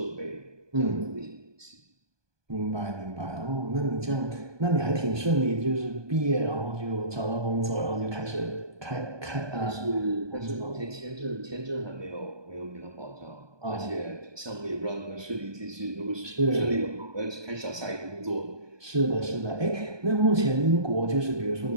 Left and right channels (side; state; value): left; late; 1.2 ms